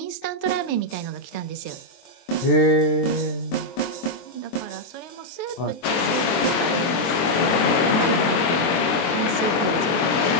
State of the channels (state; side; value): late; right; 24 ms